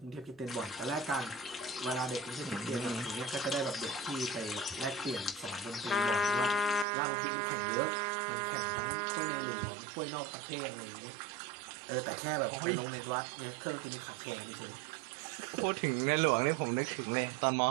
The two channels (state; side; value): drops out; left; at 6.9 s